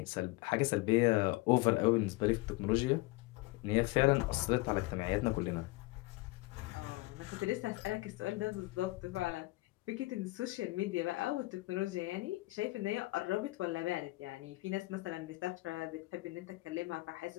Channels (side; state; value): right; quieter; 21.4 dB